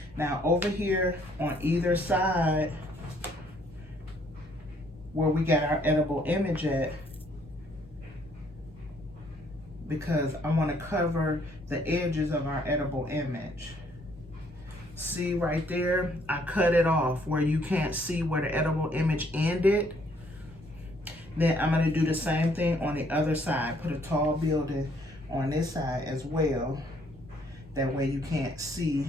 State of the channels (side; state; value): both; normal; correlation 0.65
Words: Now over here on either side where we got our edible image at, because I wanna cover the edges of our edible image. See right there, I cut it off where you can't see where the edible image ended. Then I'm gonna do the same thing on the other side. Put a tall building on this side as well. That way you can't see